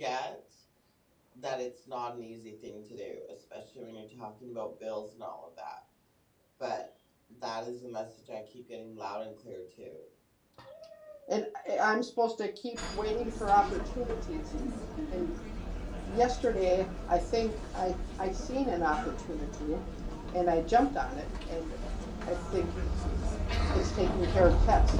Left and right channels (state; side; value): identical; both; correlation 1.00